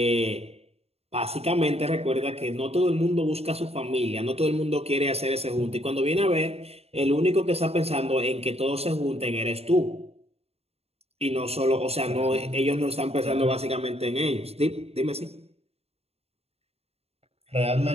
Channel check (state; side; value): late; left; 0.30 ms